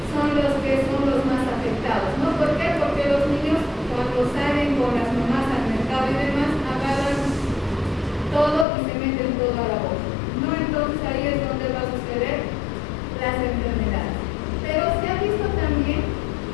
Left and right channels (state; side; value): drops out; right; at 8.7 s